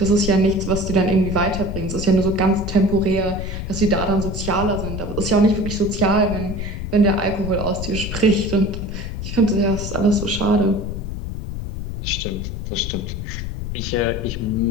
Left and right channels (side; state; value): left; noise; rumble, 5 dB below the sound